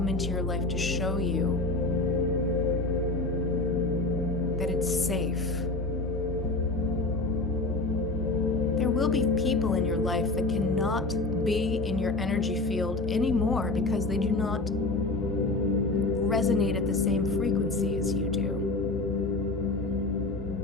into your life to show you that it's safe. There will be people in your life that cannot be in your energy field anymore because they do not resonate at the same frequency as you do.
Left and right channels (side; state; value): right; quieter; 3.1 dB